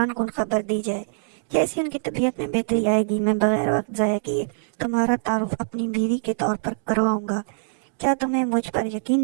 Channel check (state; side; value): silent; left; digital silence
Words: کن خبر دی جائے۔ جیسی ان کی طبیعت میں بہتری آئے گی، میں بغیر وقت ضائع کیے تمہارا تعارف اپنی بیوی کے طور پر کرواؤں گا۔ کیا تمہیں مجھ پر